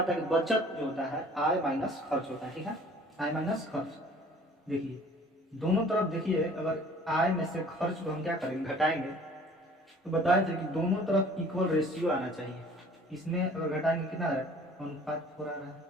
है कि बचत जो होता है आय माइनस खर्च होता है। ठीक है, आय माइनस खर्च। देखिए दोनों तरफ, देखिए अगर आय में से खर्च को हम क्या करेंगे, घटाएंगे, तो बताए थे कि दोनों तरफ इक्वल रेशियो आना चाहिए। इसमें अगर घटाएंगे कितना है, अनुपात 4 आ रहा है,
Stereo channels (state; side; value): normal; both; correlation 0.51